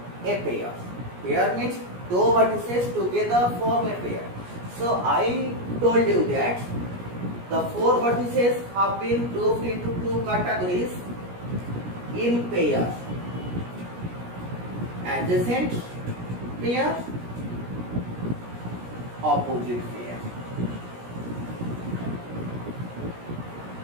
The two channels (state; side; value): late; left; 17 ms